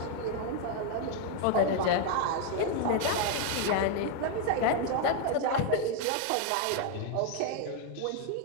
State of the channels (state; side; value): different; both; correlation 0.01